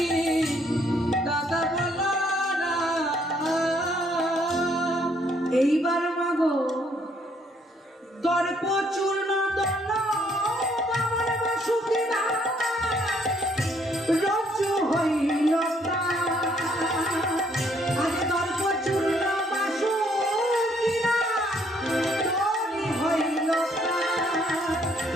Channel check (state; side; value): normal; both; correlation 0.67